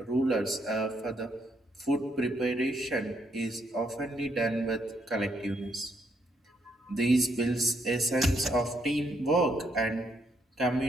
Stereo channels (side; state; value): both; normal; correlation 0.75